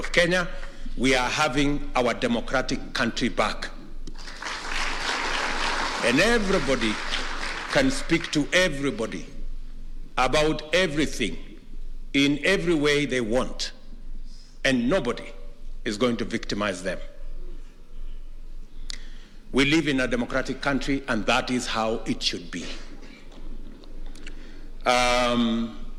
Kenya, we are having our democratic country back. And everybody can speak to everybody about everything in every way they want, and nobody is going to victimize them. We live in a democratic country, and that is how it should be.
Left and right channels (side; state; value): both; identical; correlation 1.00